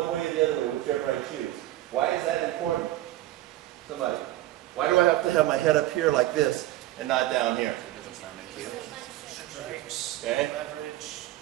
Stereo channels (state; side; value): quieter; left; 15.6 dB